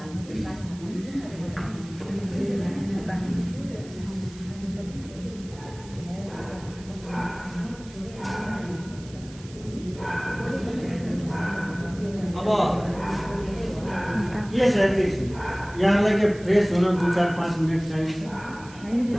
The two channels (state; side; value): noise; right; hiss, 21 dB below the sound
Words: यहाँलाई के फ्रेस हुन 2-4-5 मिनट चाहिन्छ?